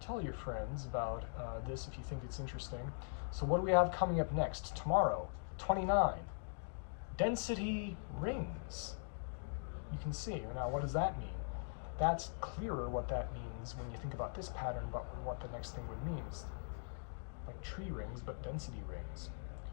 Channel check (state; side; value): silent; right; digital silence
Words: your friends about this if you think it's interesting. So what do we have coming up next? Tomorrow, 29, density rings. You can see. Now, what does that mean? That's clearer what that means when you think about this pattern, but what the next thing would mean is like tree rings, but density rings.